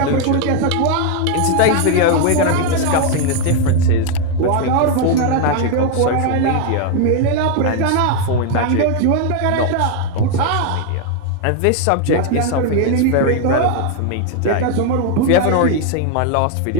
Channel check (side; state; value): both; different; correlation 0.00